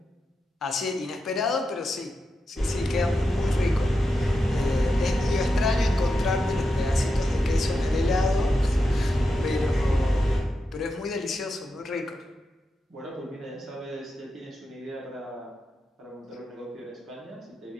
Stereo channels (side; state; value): both; normal; correlation 0.88